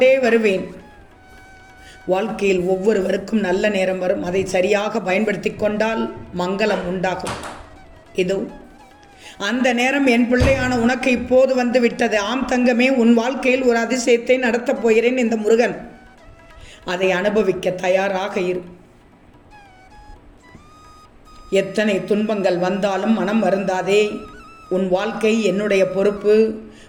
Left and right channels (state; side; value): identical; both; correlation 1.00